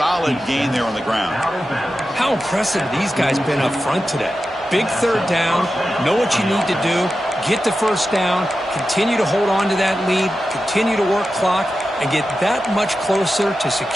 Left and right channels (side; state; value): both; normal; correlation 0.92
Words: gain there on the ground. How impressive these guys been up front today. Big third down, know what you need to do, get the first down, continue to hold on to that lead, continue to work clock, and get that much closer to